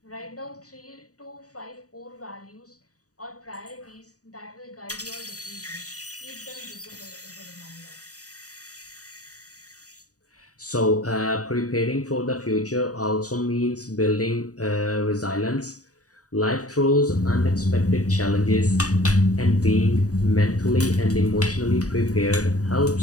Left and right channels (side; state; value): right; late; 0.66 ms